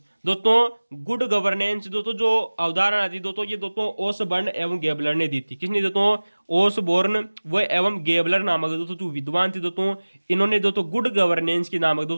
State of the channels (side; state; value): both; inverted; correlation -1.00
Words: दोस्तों गुड गवर्नेंस दोस्तों जो अवधारणा थी दोस्तों ये दोस्तों ओसबर्न एवं गेबलर ने दी थी। किसने दोस्तों? ओसबोर्न व एवं गेबलर नामक दोस्तों जो विद्वान थे दोस्तों इन्होंने दोस्तों गुड गवर्नेंस की नामक